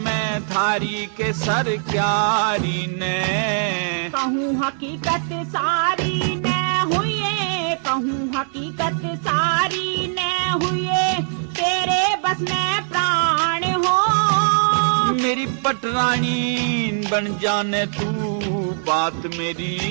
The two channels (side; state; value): left; silent; digital silence